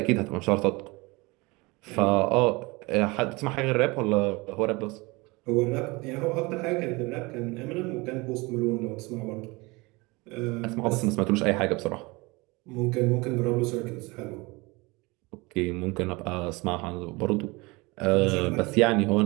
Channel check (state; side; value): quieter; left; 24.6 dB